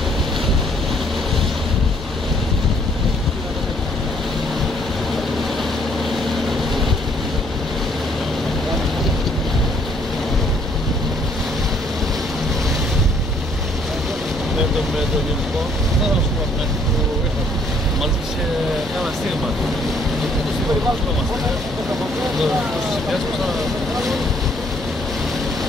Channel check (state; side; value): normal; both; correlation 0.65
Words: Με το γενικό, θα ήθελα να σου πω που ήρθα. Μας ζήτησε ένα στίγμα. Το στίγμα δεν βάζουμε. Το συνδυάσουμε σαν...